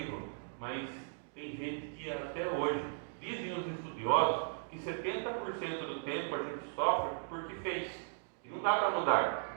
Mas tem gente que até hoje, dizem os estudiosos, que 70% do tempo a gente sofre porque fez. E não dá para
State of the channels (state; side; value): silent; left; digital silence